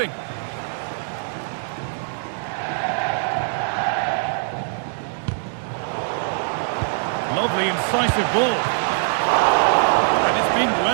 Lovely, incisive ball. And it's been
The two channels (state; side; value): silent; left; digital silence